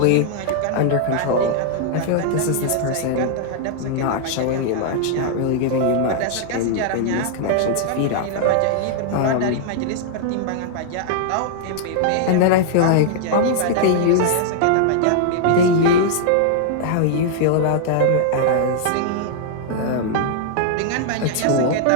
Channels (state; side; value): different; both; correlation -0.01